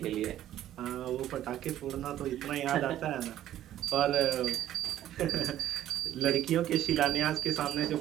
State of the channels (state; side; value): quieter; left; 12.4 dB